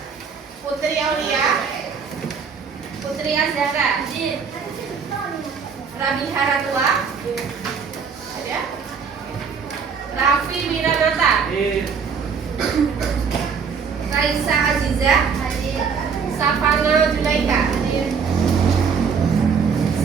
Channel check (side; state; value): left; quieter; 6.0 dB